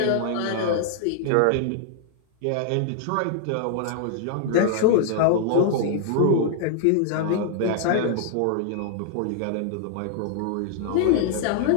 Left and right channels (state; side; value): different; both; correlation 0.00